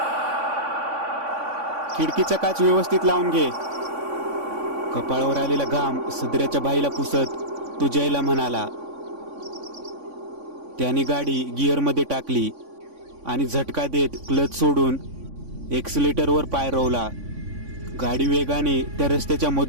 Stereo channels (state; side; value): late; left; 3.5 ms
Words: खिडकीचा काच व्यवस्थित लावून घे. कपाळावर आलेला घाम सदऱ्याच्या बाईला पुसत तो जयला म्हणाला. त्याने गाडी गिअरमध्ये टाकली आणि झटका देत क्लच सोडून एक्सिलेटरवर पाय रोवला. गाडी वेगाने त्या रस्त्याच्या